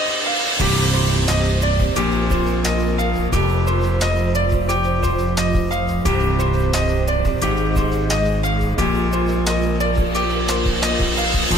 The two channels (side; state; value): both; normal; correlation 0.68